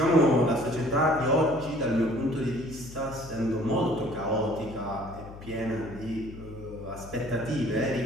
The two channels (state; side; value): noise; left; hum, 15 dB below the sound